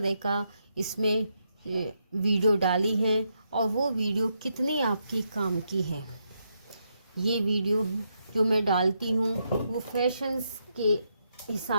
का इसमें वीडियो डाली है और वो वीडियो कितनी आपकी काम की है। ये वीडियो जो मैं डालती हूँ वो फैशंस के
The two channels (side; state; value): both; inverted; correlation -0.80